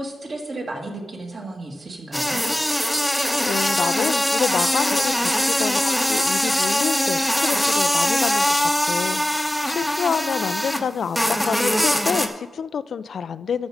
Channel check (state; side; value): normal; both; correlation 0.95